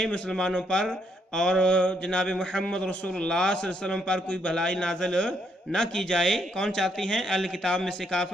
مسلمانوں پر اور جناب محمد رسول اللہ صلی اللہ علیہ وسلم پر کوئی بھلائی نازل نہ کی جائے۔ کون چاہتی ہیں؟ اہل کتاب میں سے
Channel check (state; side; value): normal; both; correlation 0.74